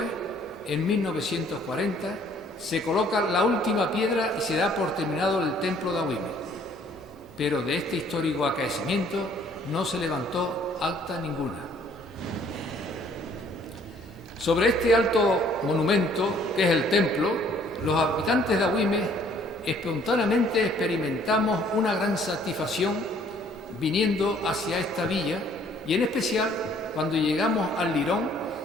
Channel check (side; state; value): both; normal; correlation 0.60